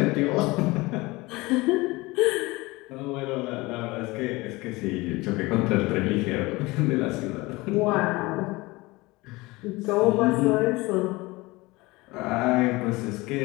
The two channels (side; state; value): right; quieter; 22.1 dB